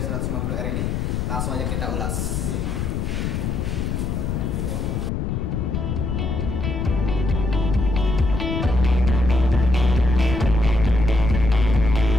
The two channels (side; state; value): left; noise; rumble, 1 dB below the sound